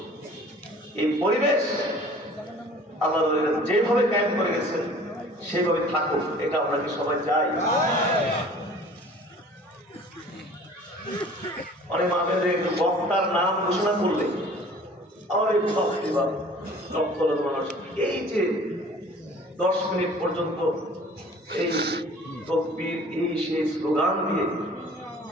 এই পরিবেশ আল্লাহর ওলিরা যেভাবে কায়েম করে গেছেন সেভাবে থাকুক, এটা আমরা কি সবাই চাই? অনেক মাহফিলে একটু বক্তার নাম ঘোষণা করলে লক্ষ লক্ষ মানুষ এই যে 10 মিনিট পর্যন্ত এই তকবীর, এই সেই স্লোগান দিয়ে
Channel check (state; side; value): normal; both; correlation 0.48